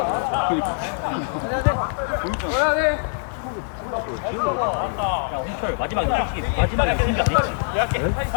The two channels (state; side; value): silent; right; digital silence